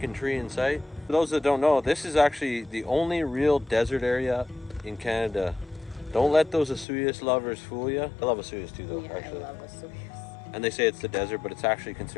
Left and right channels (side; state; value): right; drops out; at 6.9 s